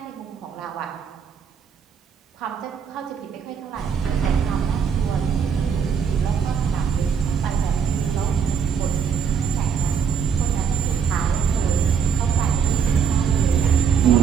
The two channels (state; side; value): quieter; left; 6.8 dB